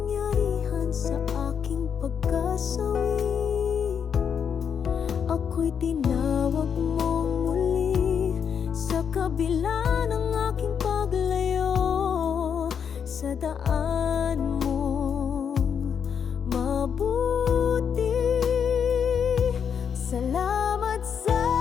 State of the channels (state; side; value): quieter; right; 7.3 dB